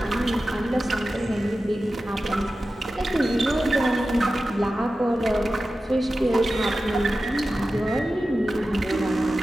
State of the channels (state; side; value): normal; both; correlation 0.94